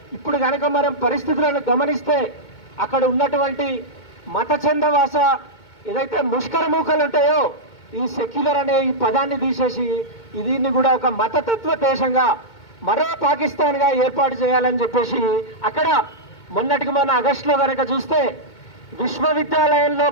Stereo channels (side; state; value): right; late; 2.2 ms